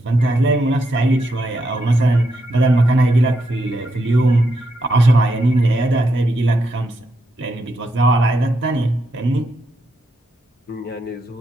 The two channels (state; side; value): normal; both; correlation 0.81